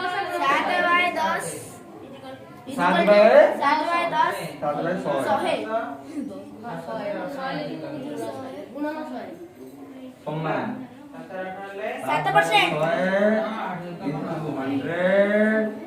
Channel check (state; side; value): identical; both; correlation 1.00